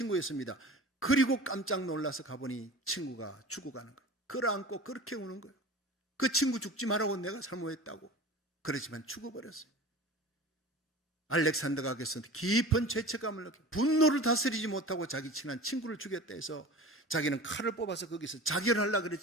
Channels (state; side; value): normal; both; correlation 0.37